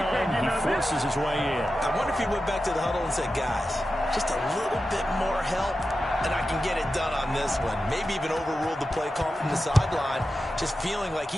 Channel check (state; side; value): normal; both; correlation 0.92